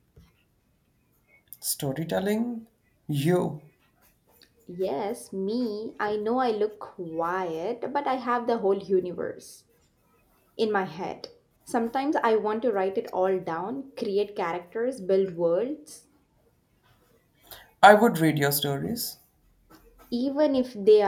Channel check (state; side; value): identical; both; correlation 1.00